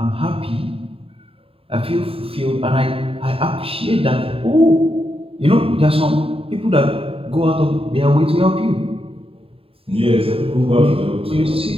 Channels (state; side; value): late; left; 0.27 ms